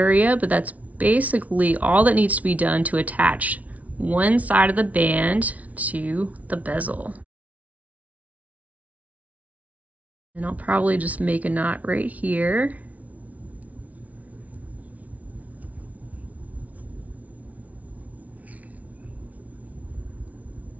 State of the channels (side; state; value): left; late; 0.070 ms